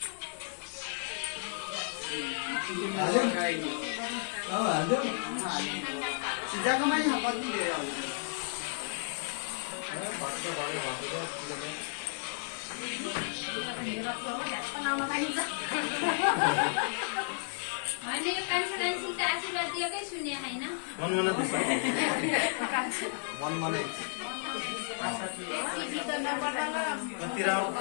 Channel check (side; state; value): right; silent; 56 dB below the other